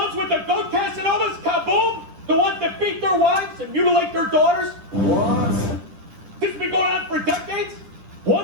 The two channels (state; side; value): late; left; 10 ms